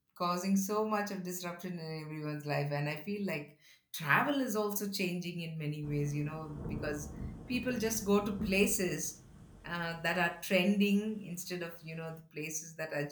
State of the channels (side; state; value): both; identical; correlation 1.00